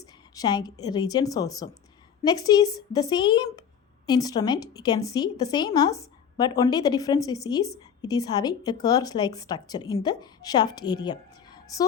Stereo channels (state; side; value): quieter; right; 7.8 dB